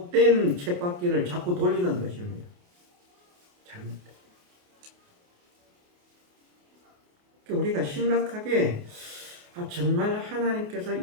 쳇바퀴를 자꾸 돌리는 것입니다. 잘못된. 우리가 심각하게 정말 하나님께서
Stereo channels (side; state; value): left; late; 28 ms